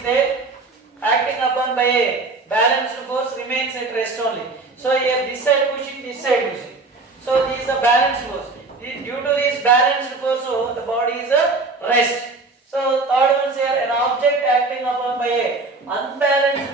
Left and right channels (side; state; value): left; quieter; 3.6 dB